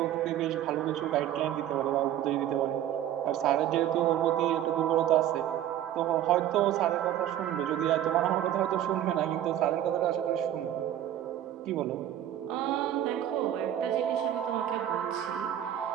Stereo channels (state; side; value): quieter; left; 11.6 dB